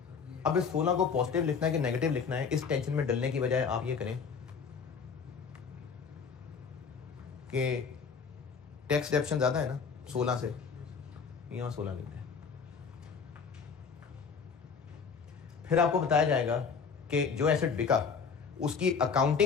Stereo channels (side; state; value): right; quieter; 5.9 dB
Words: अब इस 16 को पॉजिटिव लिखना है कि नेगेटिव लिखना है, इस टेंशन में डलने की बजाय आप ये करें कि टैक्स डेप्शन ज्यादा है ना 16 से, यहां 16 लिखते हैं। फिर आपको बताया जाएगा कि जो एसेट बिका उसकी